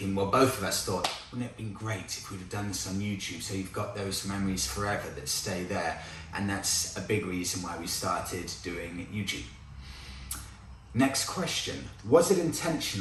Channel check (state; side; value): identical; both; correlation 1.00